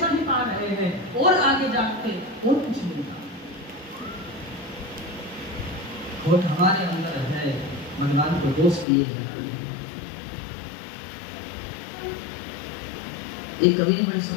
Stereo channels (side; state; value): right; drops out; at 8.8 s